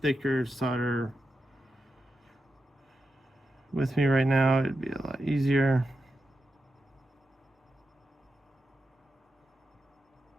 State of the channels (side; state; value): both; normal; correlation 0.89